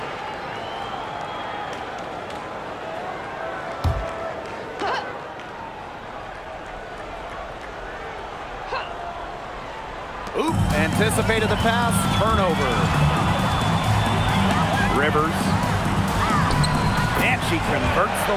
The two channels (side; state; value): both; identical; correlation 1.00